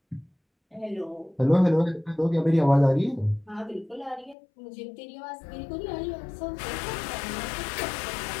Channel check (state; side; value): drops out; right; at 4.4 s